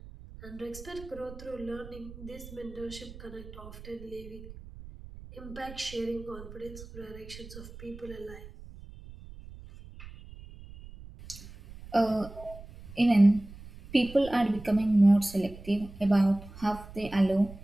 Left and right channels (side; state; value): right; noise; rumble, 16 dB below the sound